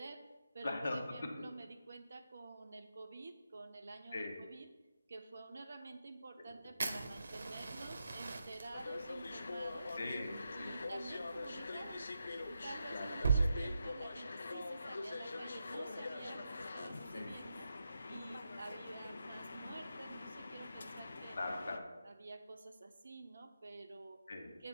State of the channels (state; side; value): inverted; both; correlation -0.86